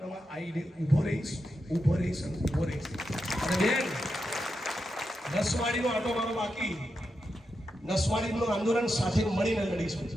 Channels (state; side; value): normal; both; correlation 0.87